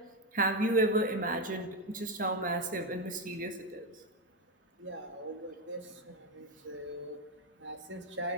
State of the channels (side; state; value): both; normal; correlation 0.08